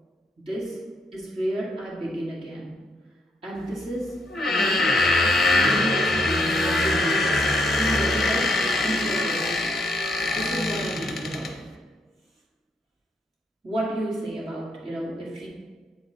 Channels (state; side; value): normal; both; correlation 0.75